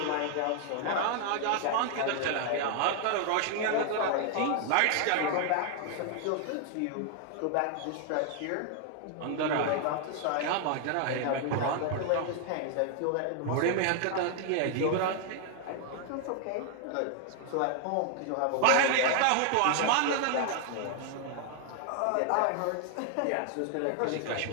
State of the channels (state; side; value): different; both; correlation 0.00